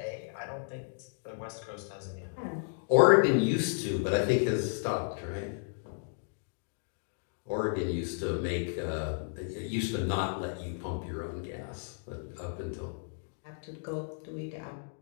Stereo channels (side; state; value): right; silent; digital silence